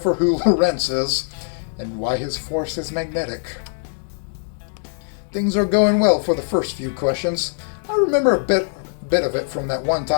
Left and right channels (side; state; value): right; silent; 65 dB below the other